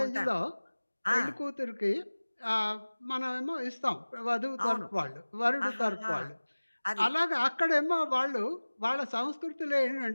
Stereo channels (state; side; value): inverted; both; correlation -1.00